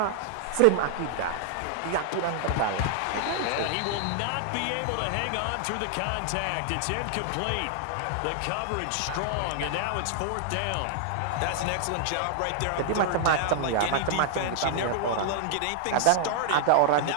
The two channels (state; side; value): different; both; correlation -0.01